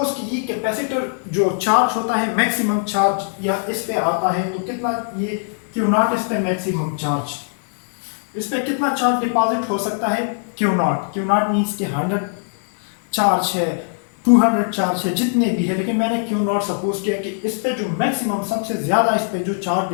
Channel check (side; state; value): right; silent; digital silence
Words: कि ये कैपेसिटर जो चार्ज होता है, मैक्सिमम चार्ज या इस पे आता है, तो कितना ये क्यू नॉट, इस पे मैक्सिमम चार्ज, इस पे कितना चार्ज डिपॉजिट हो सकता है? Q not. Q not means कि 100 चार्ज है, 200 चार्ज है, जितने भी है, लेकिन मैंने क्यू नॉट सपोज किया कि इस पे जो मैक्सिमम, सबसे ज्यादा इस पे जो चार्ज